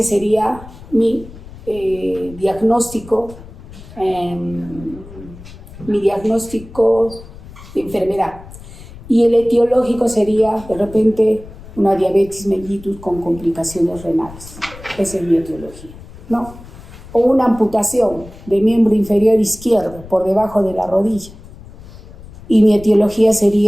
sería mi diagnóstico de enfermedad. Y el etiológico sería, de repente, una diabetes mellitus con complicaciones renales. Esa es mi etiología, ¿no? O una amputación de miembro inferior izquierdo por debajo de la rodilla. Y mi etiología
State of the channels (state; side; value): noise; left; rumble, 17 dB below the sound